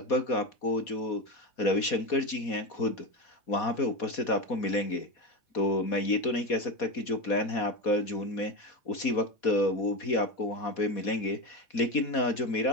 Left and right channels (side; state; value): right; late; 4.2 ms